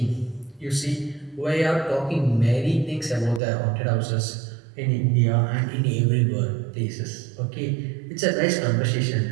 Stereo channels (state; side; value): drops out; left; at 3.4 s